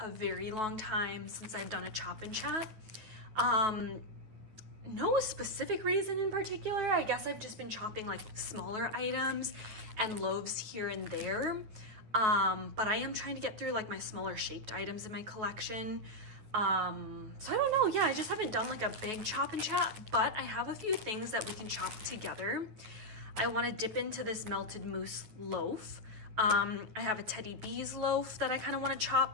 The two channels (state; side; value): late; left; 9.3 ms